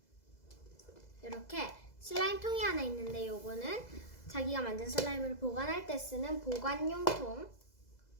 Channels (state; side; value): late; right; 2.0 ms